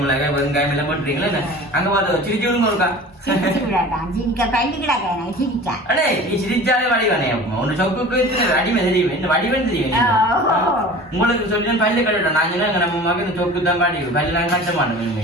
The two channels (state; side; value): normal; both; correlation 0.40